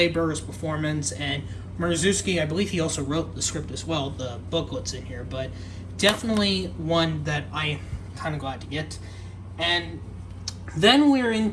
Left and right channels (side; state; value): both; identical; correlation 1.00